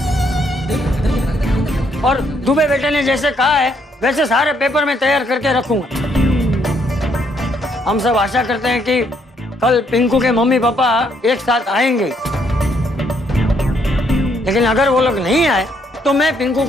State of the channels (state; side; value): normal; both; correlation 0.71